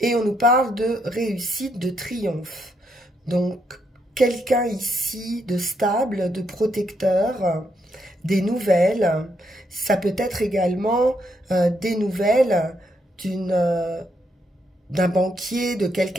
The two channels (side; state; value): both; normal; correlation 0.77